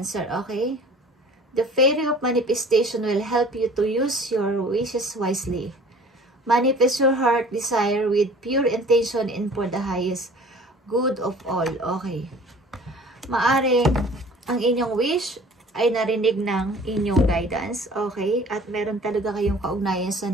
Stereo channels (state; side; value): normal; both; correlation 0.48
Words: okay? The fairy of manifestation will help you to use your wishes wisely. Manifest your heart desire with pure intention and for the highest good of all. Okay. Maaring ang inyong wish ay narinig ng inyong guidance. Okay. At meron talaga kayong kaugnayan sa